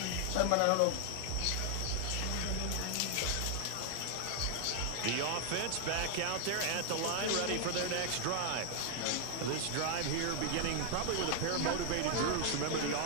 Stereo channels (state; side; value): different; both; correlation 0.00